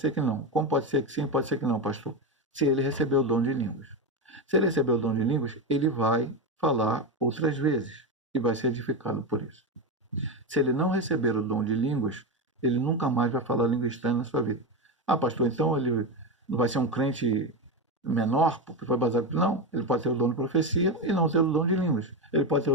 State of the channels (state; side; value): normal; both; correlation 0.14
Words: que não. Como pode ser que sim, pode ser que não, pastor? Se ele recebeu o dom de línguas. Se ele recebeu o dom de línguas, ele vai falar outras vezes e vai ser edificado por isso. Se ele não receber o dom de línguas, ele nunca mais vai falar língua estranha na sua vida. Ah, pastor, então ele não vai ser um crente menor, porque foi baseado. Não, ele pode ter o dom de profecia e não ter o dom de línguas. Ele pode ter